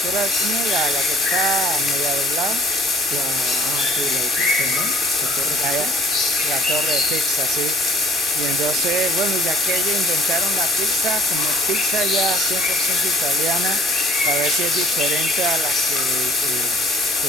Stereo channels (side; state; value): both; normal; correlation 0.55